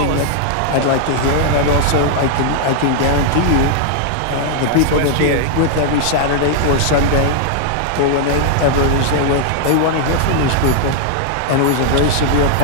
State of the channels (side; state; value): both; different; correlation -0.01